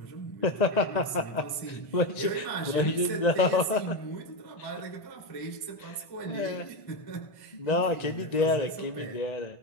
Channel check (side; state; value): right; late; 1.9 ms